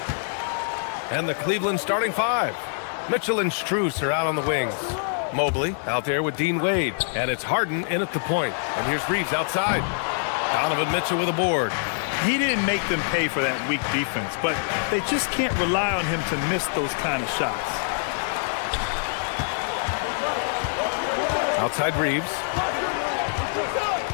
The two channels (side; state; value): right; silent; digital silence